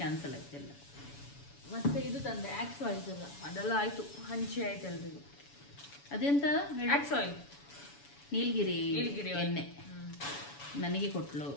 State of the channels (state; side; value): late; right; 7.1 ms